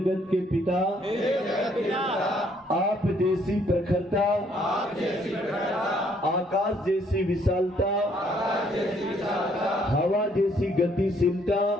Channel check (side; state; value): both; normal; correlation 0.66